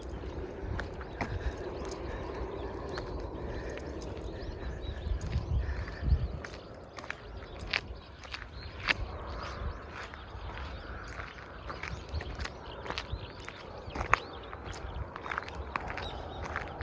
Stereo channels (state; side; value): identical; both; correlation 1.00